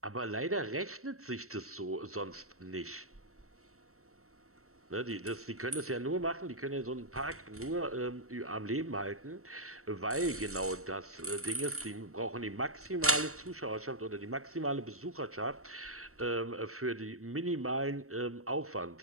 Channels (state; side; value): late; left; 0.63 ms